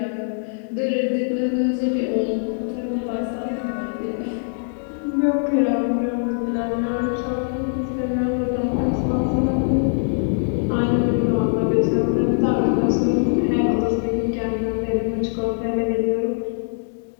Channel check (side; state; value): right; silent; digital silence